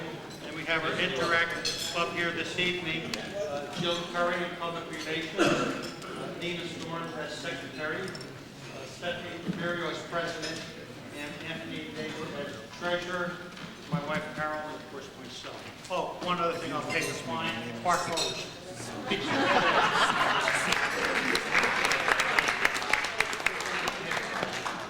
and we have our Interact Club here this evening, Jill Curry in Public Relations, Nina Storms as Secretary, Stephanie Camerio as President, and Anthony Davis as Treasurer, my wife Carol, and of course myself. Oh, one other thing, I'll take this line, Park Rose.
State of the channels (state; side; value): identical; both; correlation 1.00